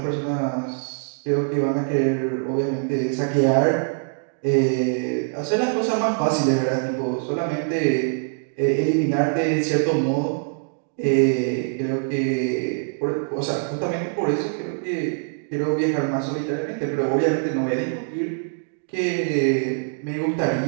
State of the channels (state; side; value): silent; left; digital silence